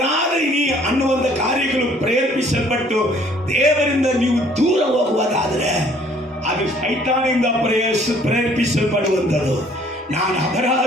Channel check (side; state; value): both; normal; correlation 0.58